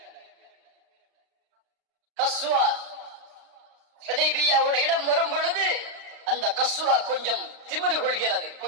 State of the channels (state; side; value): late; left; 35 ms